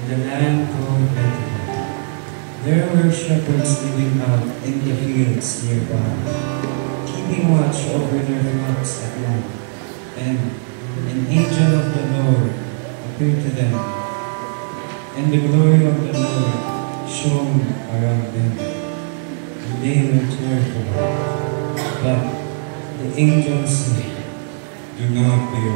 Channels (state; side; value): silent; left; digital silence